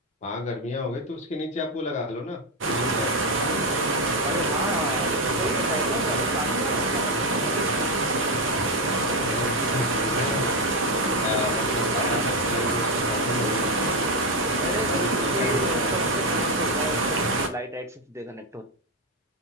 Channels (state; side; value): normal; both; correlation 0.06